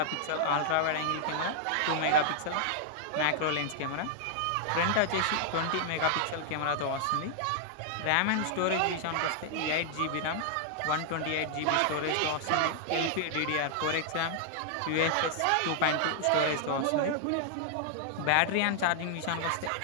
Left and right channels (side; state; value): both; different; correlation 0.00